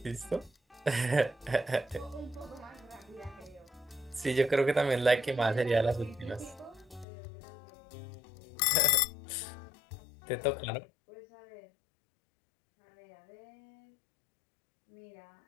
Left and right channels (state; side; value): drops out; right; at 7.1 s